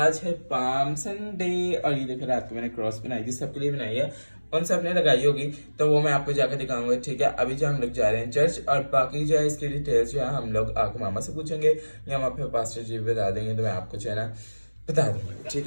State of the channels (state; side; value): inverted; both; correlation -1.00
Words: है पाम संडे। और ये देखो रात को मैंने क्रॉस बनाई थी, सबके लिए बनाई है, उन सब ने लगाई होगी तो वो मैं आपको जाकर दिखाऊंगा। ठीक है, अभी जो हम लोग जा रहे हैं चर्च और बाकी जो है इसकी डिटेल्स जो है हम लोग आके मामा से पूछेंगे या वहाँ पे पास्टर जी बता देंगे तो मैं आपको जो है ना बता दूंगा। ठीक